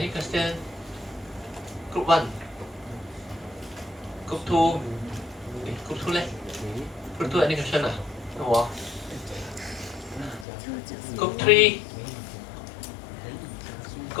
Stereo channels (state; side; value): drops out; right; at 10.5 s